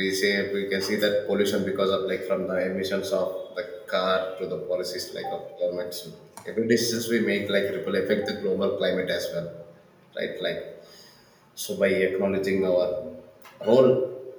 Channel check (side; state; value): both; identical; correlation 1.00